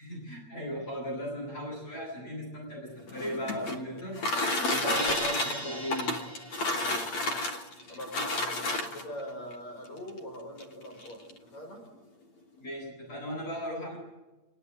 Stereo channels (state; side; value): late; right; 8.6 ms